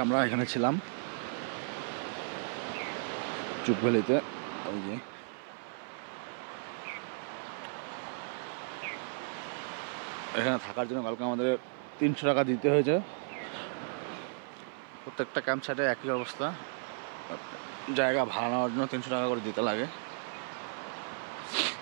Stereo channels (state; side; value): silent; left; 55 dB below the other